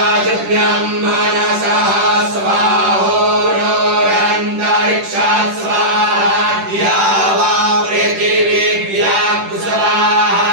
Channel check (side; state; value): left; late; 10 ms